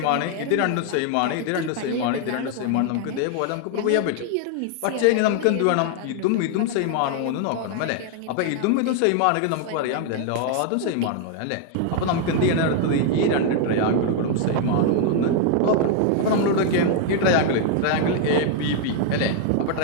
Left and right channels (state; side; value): different; both; correlation 0.00